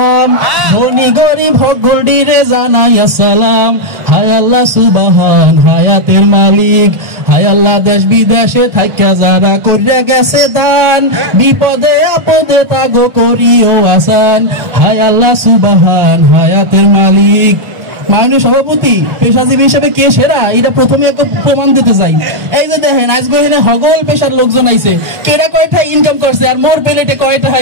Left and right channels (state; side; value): late; left; 1.4 ms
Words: ধনী গরিব সকলরে জানাই আসসালাম। হায় আল্লাহ সুবহান হায়াতের মালিক, হায় আল্লাহ দেশ বিদেশে থাইকা যারা কইরা গেছে দান, বিপদে আপদে তাগো করিও আসান। হায় আল্লাহ সুবহান হায়াতের মালিক। মাননীয় সভাপতি, পেশাজীবী হিসেবে কে সেরা এটা প্রথমে একটা প্রমাণ দিতে চাই। এই যে দেখেন আজকে এখানে হগল পেশার লোকজন আইছে, কেরা কয়টা ইনকাম করছে আর মোর প্লেটে কয়টা